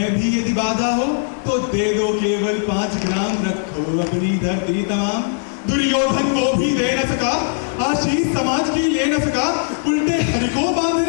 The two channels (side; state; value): right; silent; 66 dB below the other